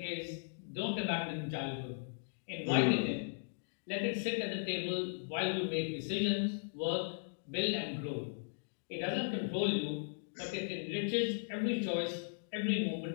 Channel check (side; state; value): right; silent; digital silence